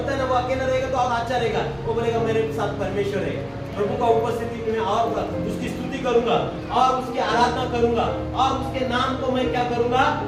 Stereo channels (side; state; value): both; identical; correlation 1.00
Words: है ना, वो अकेला रहेगा तो और अच्छा रहेगा। वो बोलेगा मेरे साथ परमेश्वर है, प्रभु का उपस्थिति में और उसकी स्तुति करूंगा और उसकी आराधना करूंगा और उसके नाम को मैं क्या करूंगा,